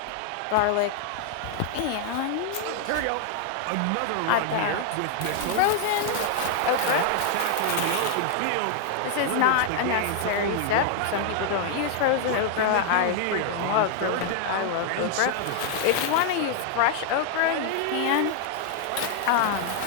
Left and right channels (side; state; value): both; different; correlation 0.00